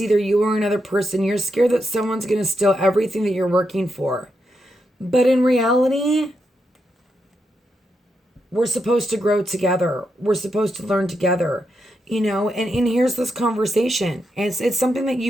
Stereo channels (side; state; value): both; normal; correlation 0.84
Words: either you or another person. You're scared that someone's going to steal everything that you're working for. But in reality, we're supposed to grow together. We're supposed to learn together, and here's this conversation. And it's something that